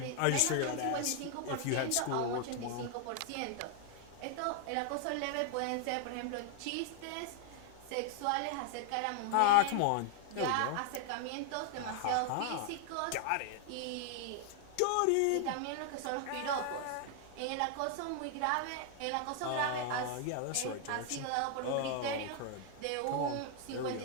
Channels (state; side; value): different; both; correlation 0.00